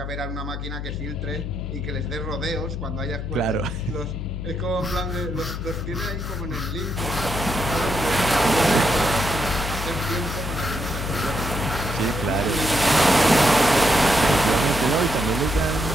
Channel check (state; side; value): noise; left; hum, 6 dB below the sound